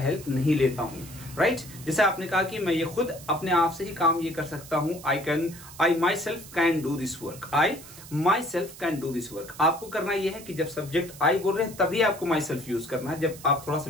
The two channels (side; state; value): right; noise; hiss, 17 dB below the sound